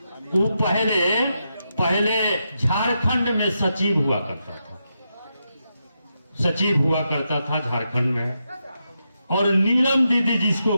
वो पहले झारखंड में सचिव हुआ करता था, सचिव हुआ करता था झारखंड में। और नीलम दीदी जिसको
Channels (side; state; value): both; inverted; correlation -0.85